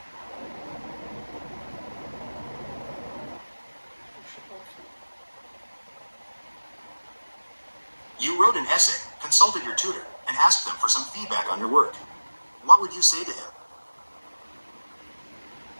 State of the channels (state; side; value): inverted; both; correlation -1.00